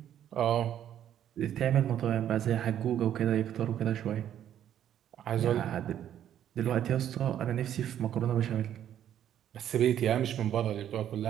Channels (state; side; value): quieter; left; 10.5 dB